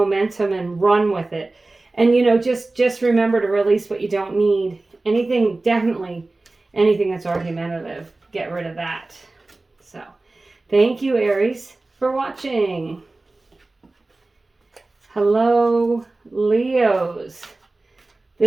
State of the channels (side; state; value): left; quieter; 3.2 dB